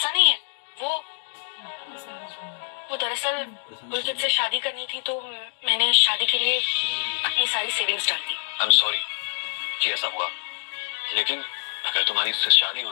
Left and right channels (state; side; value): silent; right; digital silence